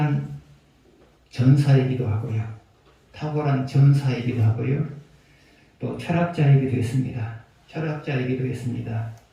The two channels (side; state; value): both; identical; correlation 1.00